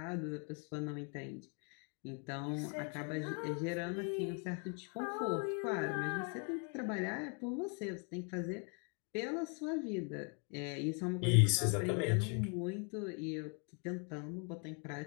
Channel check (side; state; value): right; quieter; 38.0 dB